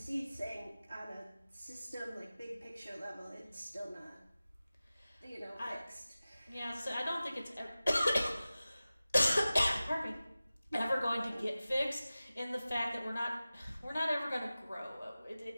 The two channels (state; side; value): inverted; both; correlation -0.96